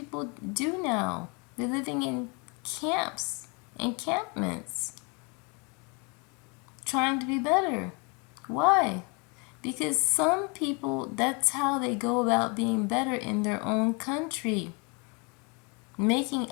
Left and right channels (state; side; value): quieter; right; 31.9 dB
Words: do now. They're living in camps, encampments, trying to be better. Why? Because some people, that's how they go about being better in their own country, making